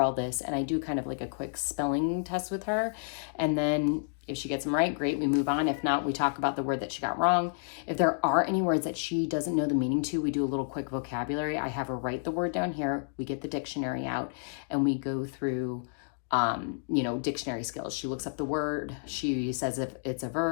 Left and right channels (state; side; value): silent; right; digital silence